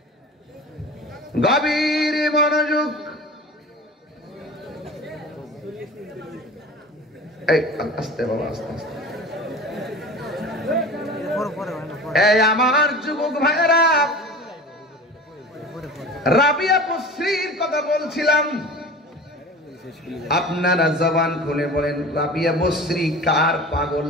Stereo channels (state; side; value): normal; both; correlation 0.37